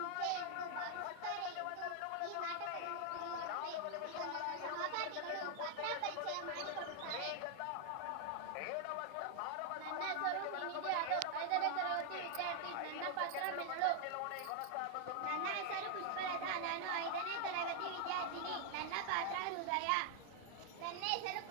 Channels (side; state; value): both; different; correlation 0.00